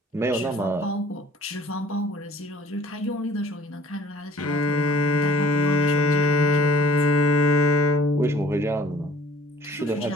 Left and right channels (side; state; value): both; normal; correlation 0.51